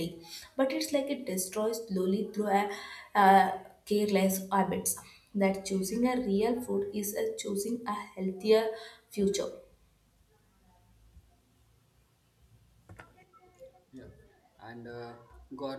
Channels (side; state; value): both; identical; correlation 1.00